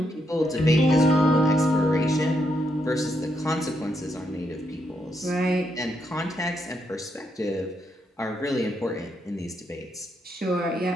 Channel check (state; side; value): normal; both; correlation 0.79